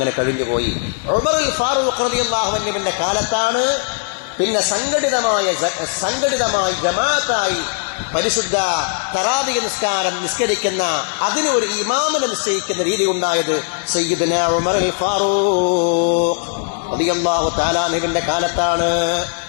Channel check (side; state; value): right; silent; 58 dB below the other